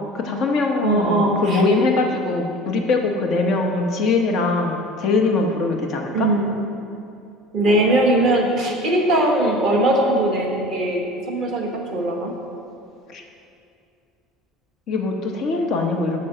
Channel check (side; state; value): both; normal; correlation 0.41